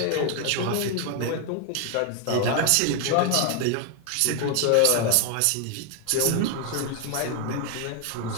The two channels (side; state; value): both; different; correlation 0.01